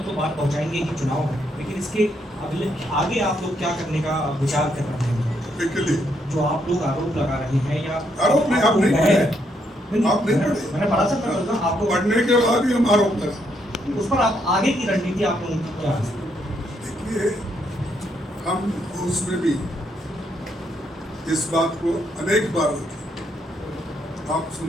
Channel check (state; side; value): normal; both; correlation 0.75